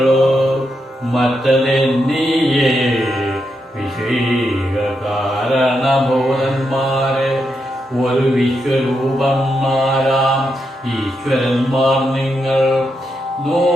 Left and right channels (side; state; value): both; normal; correlation 0.83